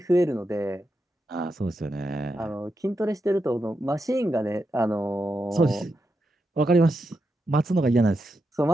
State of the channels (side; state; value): both; normal; correlation 0.86